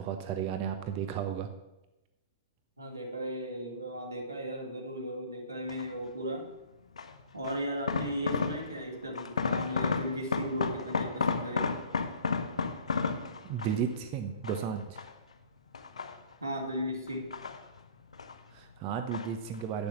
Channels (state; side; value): inverted; both; correlation -0.48